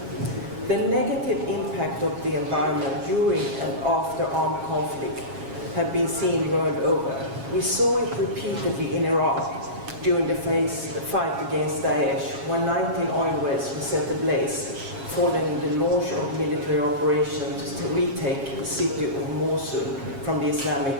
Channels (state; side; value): late; left; 7.3 ms